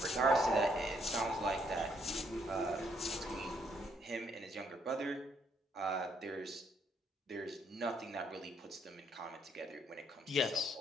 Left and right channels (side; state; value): both; normal; correlation 0.70